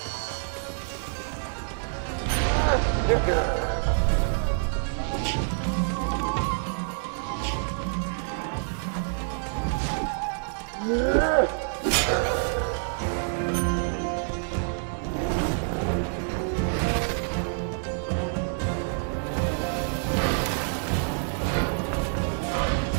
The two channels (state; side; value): silent; left; digital silence